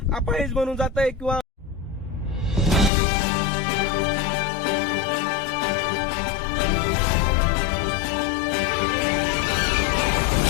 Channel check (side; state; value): right; drops out; at 2.9 s